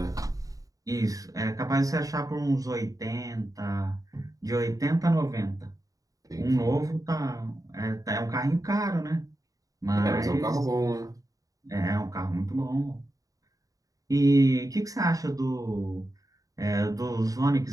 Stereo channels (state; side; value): late; left; 0.17 ms